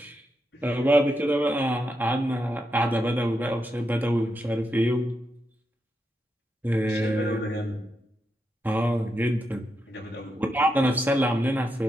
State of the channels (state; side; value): normal; both; correlation 0.84